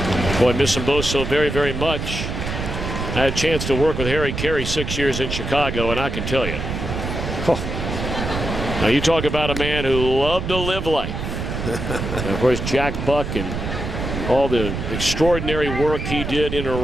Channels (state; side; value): noise; right; rumble, 4 dB below the sound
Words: Boy, I miss them both so very, very much. I had a chance to work with Harry Carey 6 years in Chicago, and I can tell you. Now you talk about a man who loved to live life. And of course, Jack Buck and all the extraordinary work he did in and